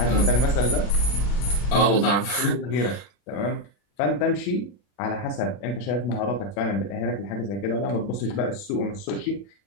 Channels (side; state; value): right; late; 40 ms